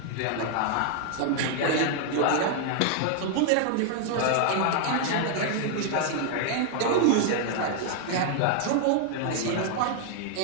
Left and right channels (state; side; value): different; both; correlation 0.00